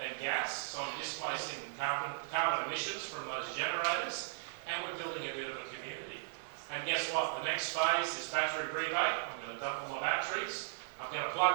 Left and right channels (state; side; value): silent; left; digital silence